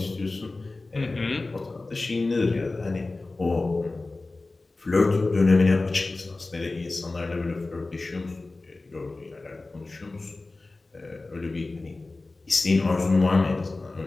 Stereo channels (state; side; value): quieter; right; 3.3 dB